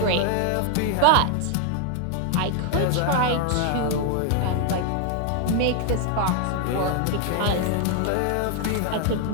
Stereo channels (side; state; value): both; different; correlation 0.00